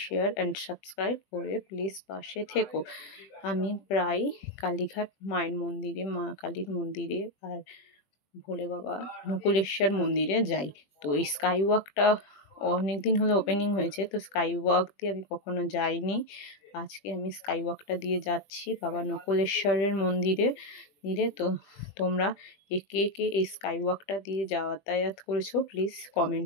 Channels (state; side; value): late; right; 21 ms